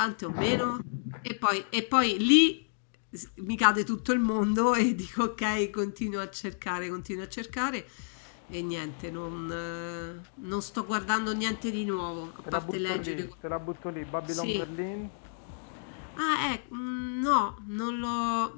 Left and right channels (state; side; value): silent; right; digital silence